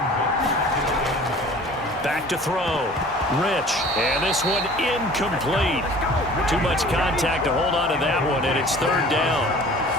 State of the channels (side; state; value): both; normal; correlation 0.46